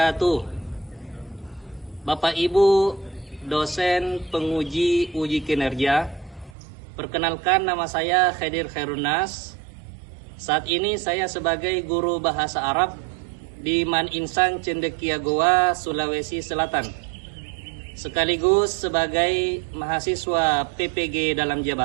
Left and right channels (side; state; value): left; drops out; at 6.6 s